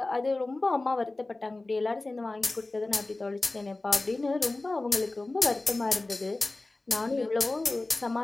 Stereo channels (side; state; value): right; quieter; 3.1 dB